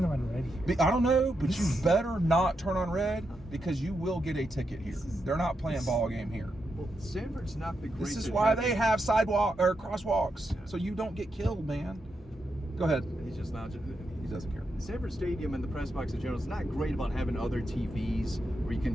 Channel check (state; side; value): normal; both; correlation 0.84